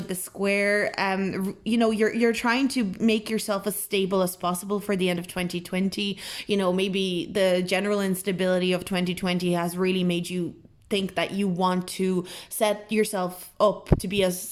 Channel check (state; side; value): identical; both; correlation 1.00